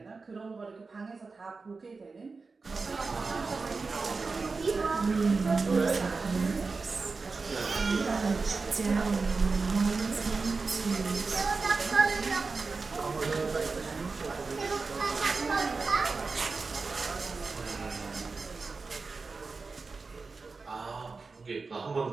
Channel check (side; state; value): left; quieter; 4.2 dB